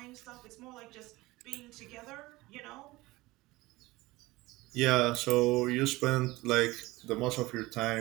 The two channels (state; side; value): quieter; left; 20.1 dB